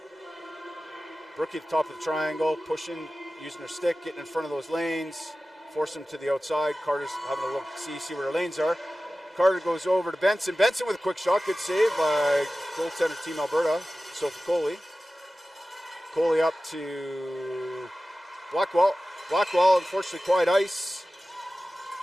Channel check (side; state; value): both; normal; correlation 0.95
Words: Brookie at the top of the triangle, pushing, using her stick, getting in front of those lanes, force them to the outside. Carter's having a look, see where her lanes are. Carter goes over to Benson. Benson with a quick shot. Good save by goaltender Team Alberta, Sophie Coley. Coley up to Blackwell. Blackwell, unfortunately, quiet ice.